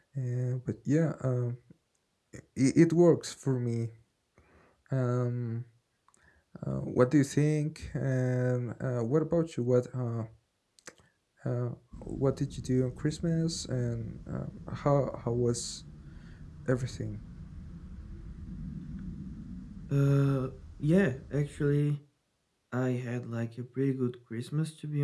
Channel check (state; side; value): identical; both; correlation 1.00